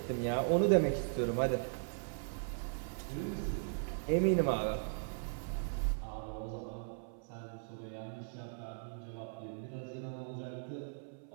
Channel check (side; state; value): left; silent; 52 dB below the other